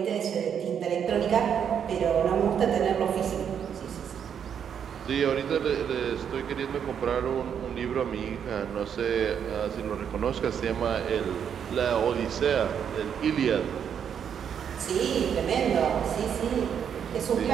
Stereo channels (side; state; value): left; quieter; 8.1 dB